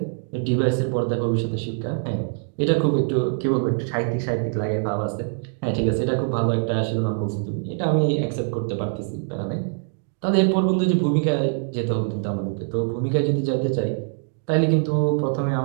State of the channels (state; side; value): silent; left; 60 dB below the other